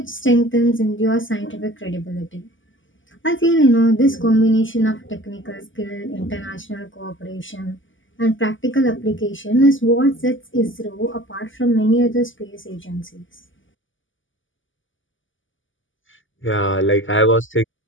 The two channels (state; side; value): late; right; 0.57 ms